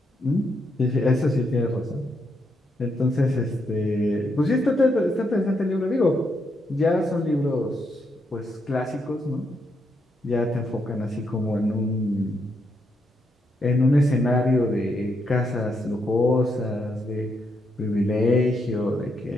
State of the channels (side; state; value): both; normal; correlation 0.79